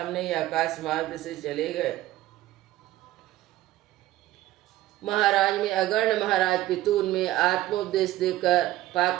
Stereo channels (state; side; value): quieter; left; 15.5 dB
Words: ही आकाश मार्ग से चले गए। महाराज में अगर्ण महाराज पृथु उनमें आत्मोपदेश देकर